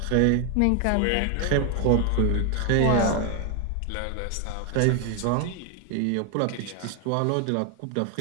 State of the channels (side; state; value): both; different; correlation 0.01